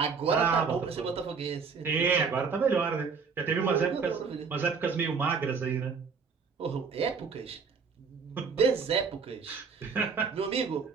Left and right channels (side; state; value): left; quieter; 5.5 dB